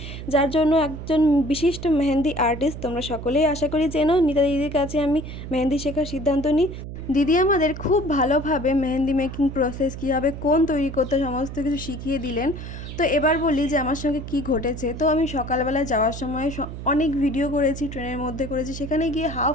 যার জন্য একজন বিশিষ্ট মেহেন্দি আর্টিস্ট তোমরা সকলেই আশা করি চেনো, নিতা দিদির কাছে আমি মেহেন্দি শেখার সিদ্ধান্ত নিই। দিদি আমাদের খুব ভালোভাবে মেহেন্দি মেকিং প্রসেস কীভাবে কোন তৈরি করতে সমস্ত কিছু শিখিয়ে দিলেন। তো এবার বলি যে আমার সঙ্গে কি ঘটেছে। তো আমি সকালবেলা যাওয়ার সময় অনেক ভিডিও করেছি, ট্রেনের মধ্যে করেছি, সেখানে গিয়ে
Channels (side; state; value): right; noise; hum, 9 dB below the sound